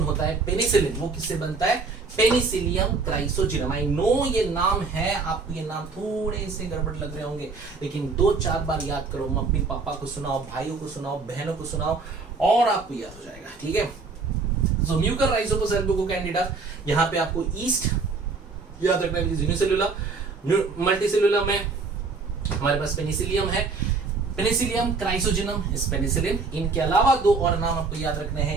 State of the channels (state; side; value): quieter; left; 4.3 dB